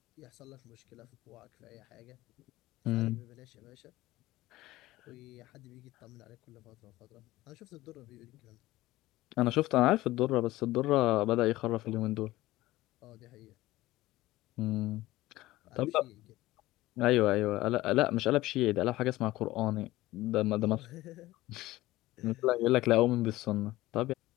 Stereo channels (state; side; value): quieter; right; 17.4 dB